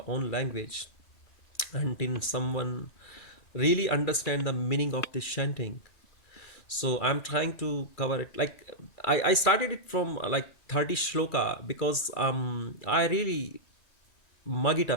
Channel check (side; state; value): right; late; 2.3 ms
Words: own language until someone really understand the meaning of this chanting. So I'm trying to cover it, like I started it from like 30 shloka, because I really mug it